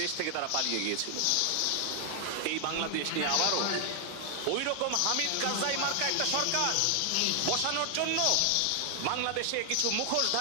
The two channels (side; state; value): both; different; correlation 0.00